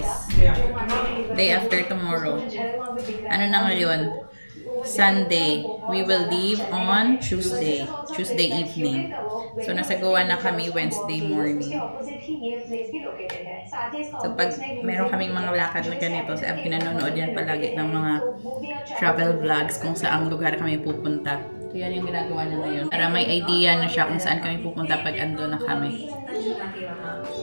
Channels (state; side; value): inverted; both; correlation -1.00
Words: Day after tomorrow. Ano na ngayon? Sunday. We will leave on Tuesday evening. So, nasa Goa na kami Wednesday morning. So, pag meron kaming mga lakad na ganito, sa pinanonood yan palagi ng mga travel vlogs kung saang lugar kami pupunta. So, yan yung ginagawa na ngayon. Para may idea na siya kung saan kami pupunta pag ando na kami.